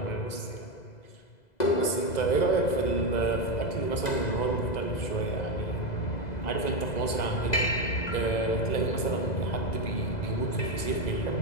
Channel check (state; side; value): late; right; 2.0 ms